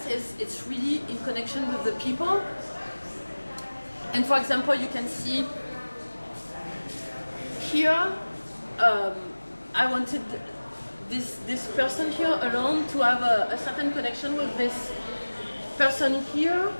is it's really in connection with the people. And for example, you can see here, I wanted this person here alone to have a certain connection with this person here.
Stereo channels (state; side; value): inverted; both; correlation -1.00